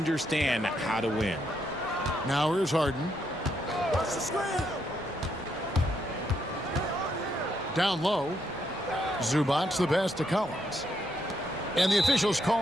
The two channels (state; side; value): normal; both; correlation 0.77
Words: how to win. Now here's Harden. Down low. Zubac the pass to Collins. And the officials